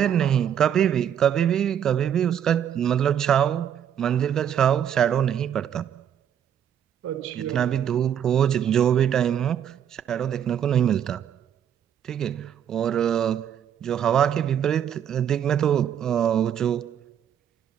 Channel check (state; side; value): quieter; left; 9.3 dB